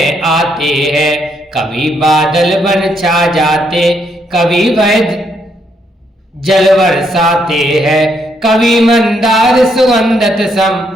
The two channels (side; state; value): both; normal; correlation 0.75